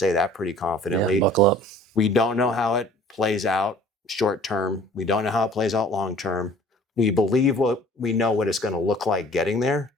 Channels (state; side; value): normal; both; correlation 0.51